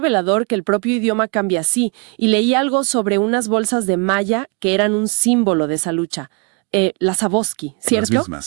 que el propio idioma cambie así! Y leí algo sobre unas bolsas de malla que eran un símbolo de esa lucha. Las Aboski, ¿cierto? Las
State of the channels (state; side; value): quieter; left; 30.8 dB